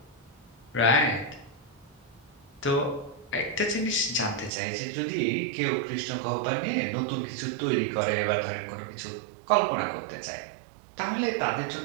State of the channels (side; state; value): left; drops out; at 4.5 s